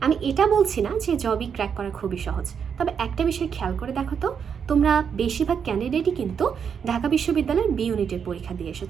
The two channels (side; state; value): left; quieter; 7.1 dB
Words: আমি এটা বলছি না যে জবই ক্র্যাক করা খুবই সহজ। তবে একটা বিষয় খেয়াল করে দেখো তো, তোমরা বেশিরভাগ ক্যান্ডিডেটই কিন্তু ঢাকা বিশ্ববিদ্যালয়ের বি ইউনিটের পরীক্ষা দিয়ে